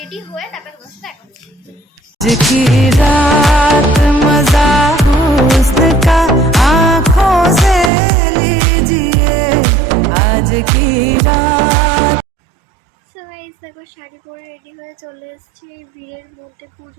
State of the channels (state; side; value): drops out; left; at 7.9 s